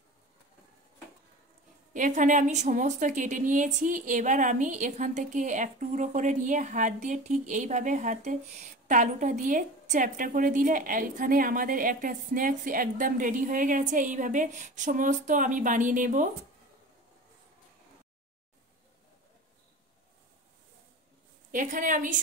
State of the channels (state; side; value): normal; both; correlation 0.34